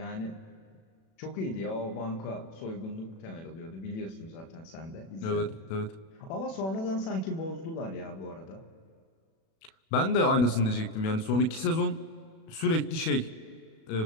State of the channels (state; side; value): late; right; 37 ms